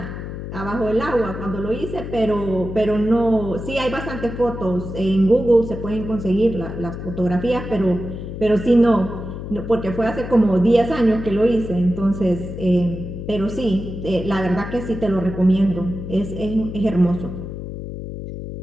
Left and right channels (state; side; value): noise; left; hum, 8 dB below the sound